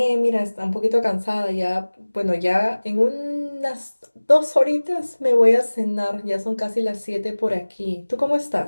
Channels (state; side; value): inverted; both; correlation -1.00